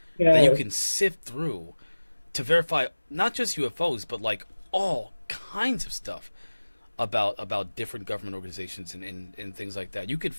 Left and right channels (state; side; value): inverted; both; correlation -1.00